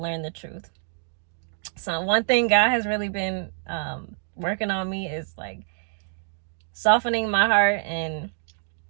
learn the truth. So one thing God has really been working on me is like softening my heart and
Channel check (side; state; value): left; silent; digital silence